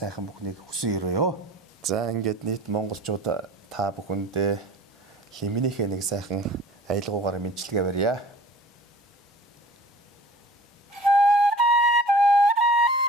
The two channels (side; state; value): both; normal; correlation 0.44